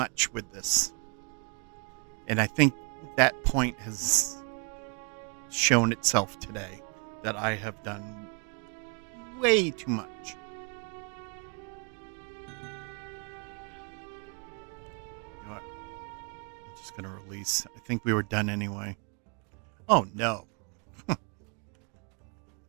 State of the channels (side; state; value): left; quieter; 36.3 dB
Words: with this? And I think that point has shown itself today, that I have done way too much. You know what? I'm just going to release. I think we were done anyway. Oh, no.